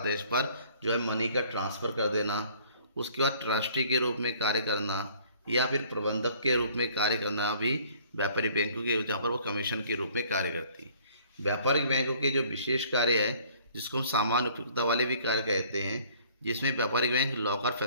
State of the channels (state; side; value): inverted; both; correlation -0.56